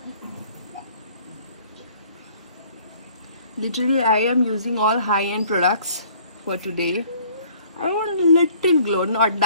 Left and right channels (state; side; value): inverted; both; correlation -0.56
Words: literally I am using all high-end products for today. I want a little glow, not